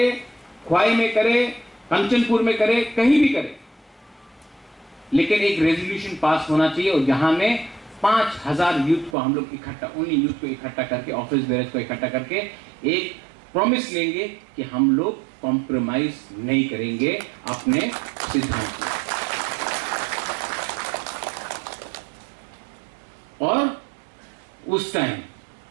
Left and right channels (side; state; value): left; drops out; at 9.2 s